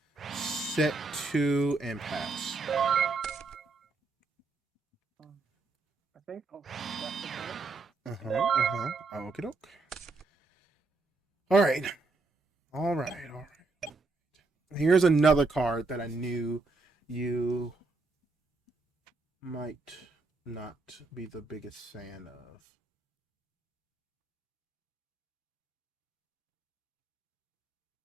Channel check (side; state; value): left; quieter; 3.6 dB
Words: Set two and pass. I think I'll set the card. Okie doke. Alright. Alright. Here's another card that I knew you might not be the biggest fan of.